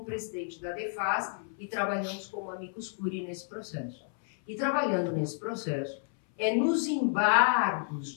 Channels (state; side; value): silent; right; 57 dB below the other